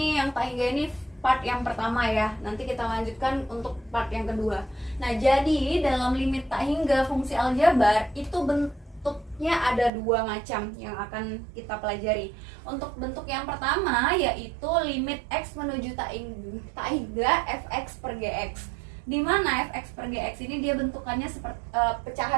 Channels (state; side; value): drops out; left; at 9.9 s